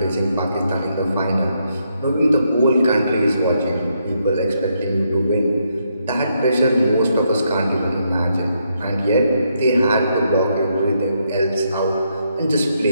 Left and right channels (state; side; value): inverted; both; correlation -0.78